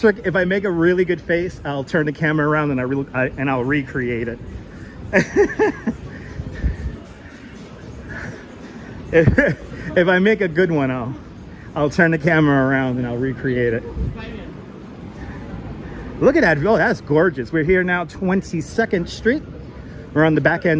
If I make a really good face, I'll turn the camera around and I'll recreate it. If I make a good one, I'll turn the camera around and I'll recreate it. Look at that. Oh, that's gorgeous. We're here now, 22nd Street. We're on the back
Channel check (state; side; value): identical; both; correlation 1.00